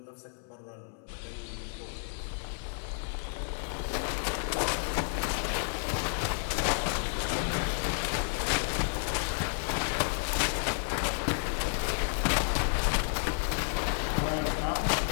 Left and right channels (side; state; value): right; silent; 57 dB below the other